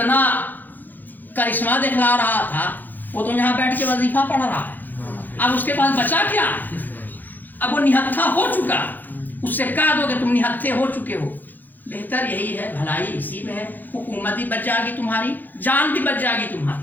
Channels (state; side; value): late; right; 0.086 ms